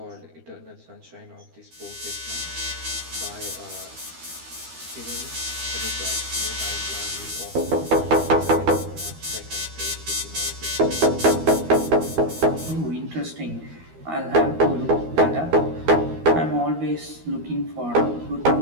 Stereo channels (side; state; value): left; late; 13 ms